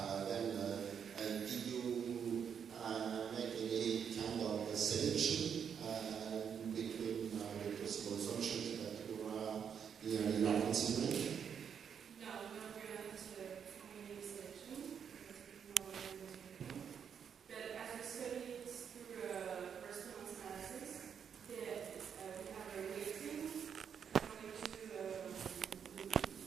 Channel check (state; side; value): quieter; left; 7.6 dB